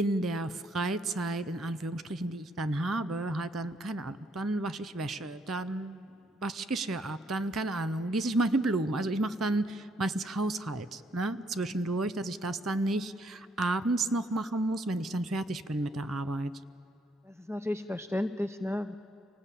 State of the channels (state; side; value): normal; both; correlation 0.71